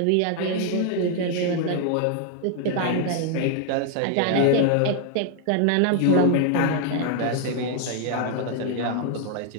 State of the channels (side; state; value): both; different; correlation 0.00